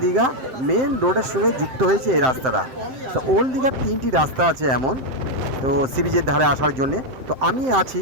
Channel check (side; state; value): left; late; 7.7 ms